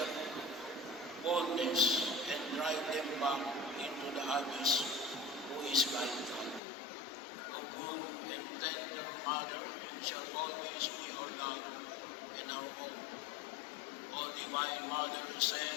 boldness, and drive them back into the abyss, who is like God. O good and tender Mother, you shall always be our love and our hope. O Divine Mother,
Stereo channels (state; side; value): drops out; right; at 6.6 s